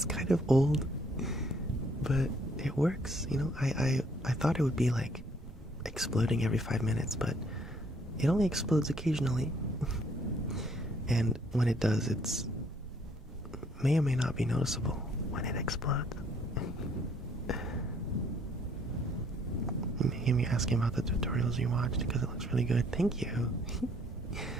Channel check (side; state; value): both; normal; correlation 0.64